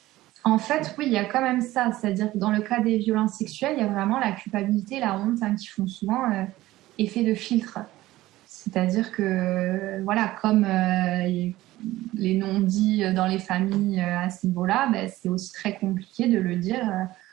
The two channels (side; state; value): left; quieter; 16.7 dB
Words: En fait, oui, il y a quand même ça. C'est-à-dire que dans le cas des violences sexuelles, il y a vraiment la culpabilité, la honte qui font souvent effet de filtre. C'est-à-dire que, voilà, comme les non-dits dans les familles à ce niveau-là, c'est aussi très compliqué de le dire